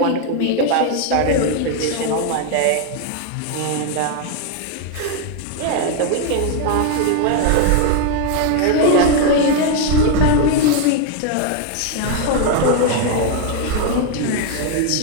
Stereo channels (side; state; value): both; different; correlation 0.01